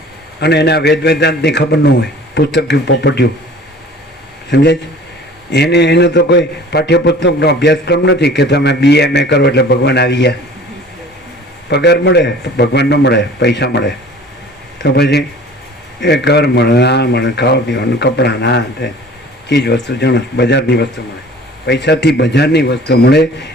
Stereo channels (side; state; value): both; normal; correlation 0.46